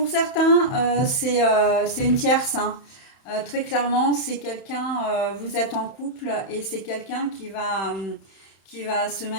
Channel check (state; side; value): late; right; 31 ms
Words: certains, c'est une tierce, hein. Très clairement, c'est quelqu'un, vous êtes en couple et c'est quelqu'un qui va se